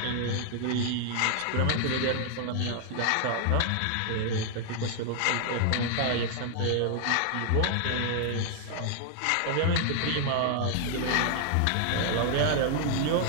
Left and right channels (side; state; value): both; different; correlation 0.00